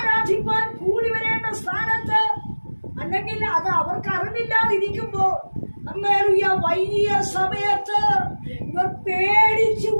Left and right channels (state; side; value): inverted; both; correlation -1.00